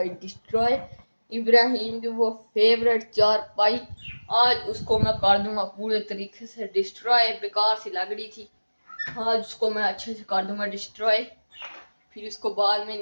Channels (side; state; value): both; inverted; correlation -1.00